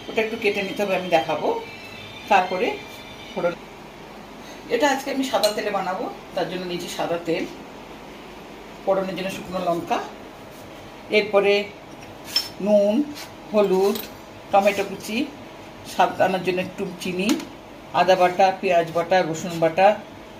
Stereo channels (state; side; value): identical; both; correlation 1.00